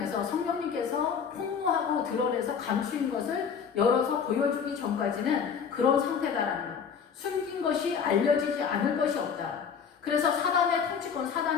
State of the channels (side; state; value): right; quieter; 6.8 dB